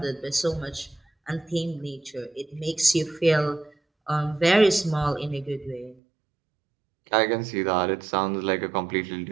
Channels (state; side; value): drops out; left; at 6.0 s